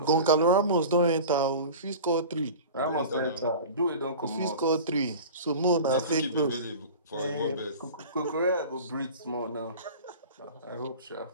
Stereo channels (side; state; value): both; inverted; correlation -0.36